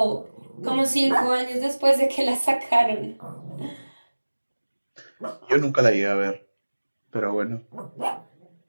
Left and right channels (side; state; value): both; inverted; correlation -1.00